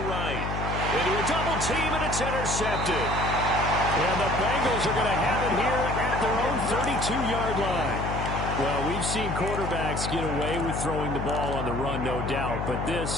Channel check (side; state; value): left; noise; hum, 3 dB below the sound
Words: right. Into a double team, and it's intercepted. And the Bengals are going to have it here at their own 32-yard line. Well, we've seen quarterbacks get away with throwing the ball on the run, no doubt. But